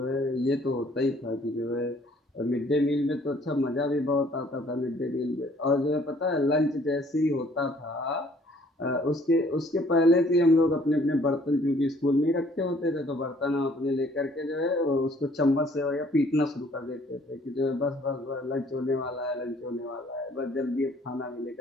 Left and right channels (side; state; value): both; normal; correlation 0.59